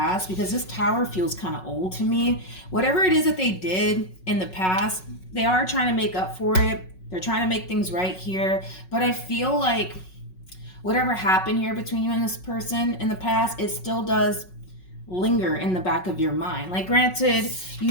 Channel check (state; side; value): late; right; 5.4 ms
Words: because this Tower feels kind of old to me. Whatever it is that they did in the past, they are trying to make up for it. They're trying to make things right here. But I feel like whatever happened here between you and this person in the past, it still does linger in the back of your mind. Like, granted, you